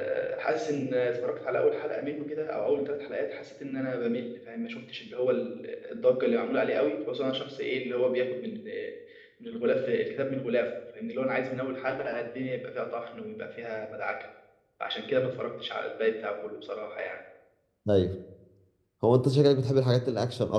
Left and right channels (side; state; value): both; identical; correlation 1.00